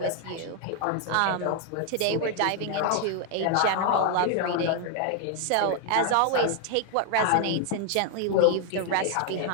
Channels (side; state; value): both; different; correlation 0.00